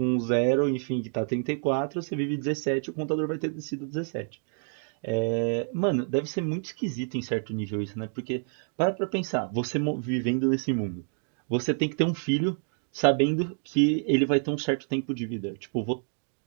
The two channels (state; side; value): silent; left; 59 dB below the other